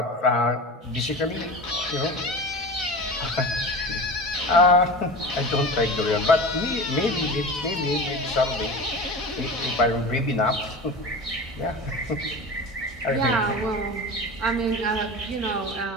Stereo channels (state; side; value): normal; both; correlation 0.31